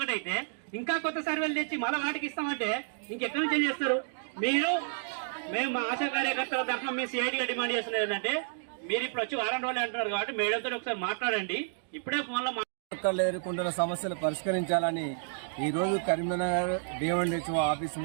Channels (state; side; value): silent; left; digital silence